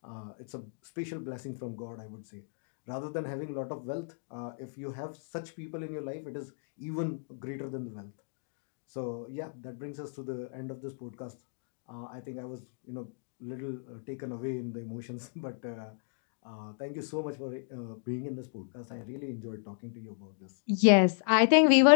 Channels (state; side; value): silent; right; digital silence